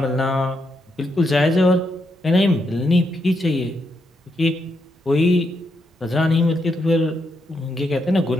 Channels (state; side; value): normal; both; correlation 0.80